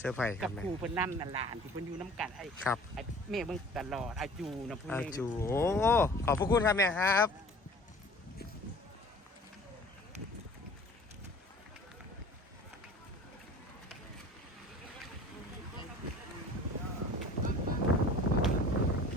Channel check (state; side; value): normal; both; correlation 0.46